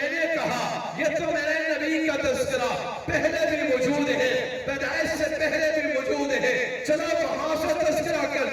نے کہا یہ تو میرے نبی کا تذکرہ پہلے بھی موجود ہے، پیدائش سے پہلے بھی موجود ہے، چلو وہاں سے تذکرہ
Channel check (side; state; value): both; identical; correlation 1.00